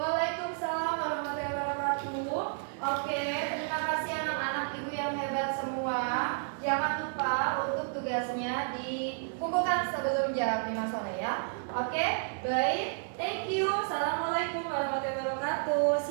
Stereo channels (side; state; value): left; silent; digital silence